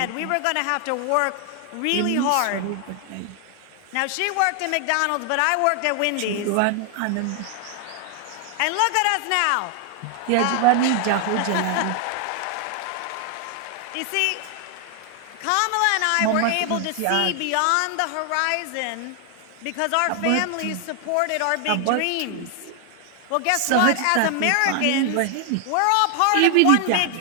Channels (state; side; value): different; both; correlation 0.00